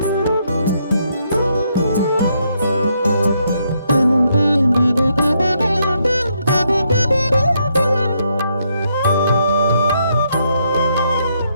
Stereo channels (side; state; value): both; inverted; correlation -0.76